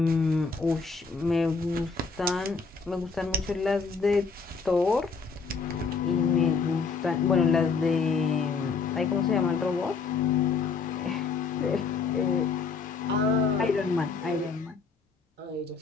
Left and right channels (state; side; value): quieter; right; 4.8 dB